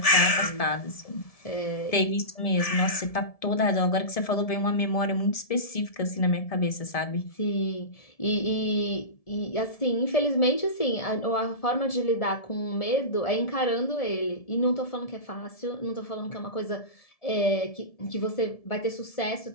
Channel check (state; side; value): late; right; 1.7 ms